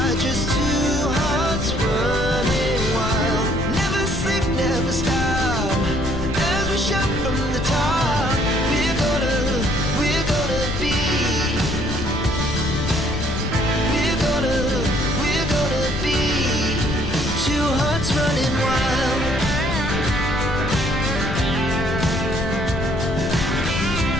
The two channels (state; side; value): noise; left; rumble, 5 dB below the sound